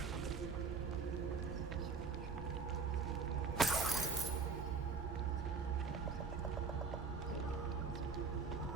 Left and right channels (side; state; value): left; quieter; 4.9 dB